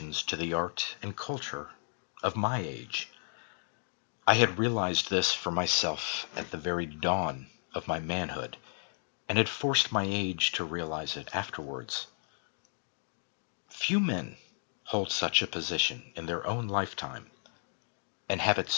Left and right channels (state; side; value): silent; right; 55 dB below the other